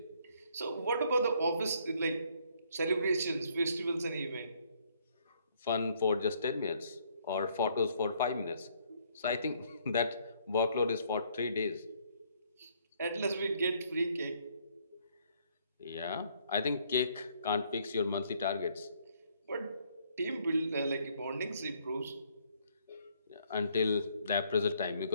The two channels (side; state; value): both; inverted; correlation -0.66